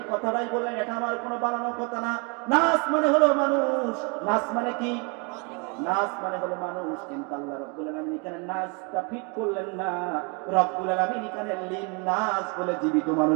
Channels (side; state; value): left; quieter; 33.0 dB